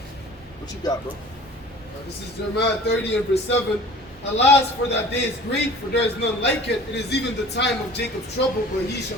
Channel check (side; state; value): both; normal; correlation 0.45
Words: What you got, bro? This is Jeremiah 30 and verse 7. Alas, for that day is great, for there is none like it. It is even the time of Jacob's trouble, but he shall